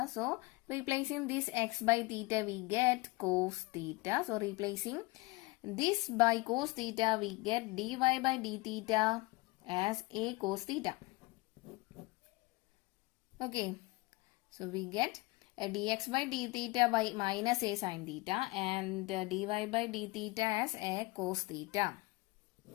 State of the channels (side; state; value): right; quieter; 23.6 dB